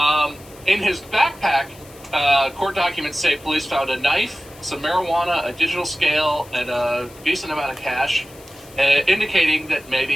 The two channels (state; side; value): noise; left; hiss, 23 dB below the sound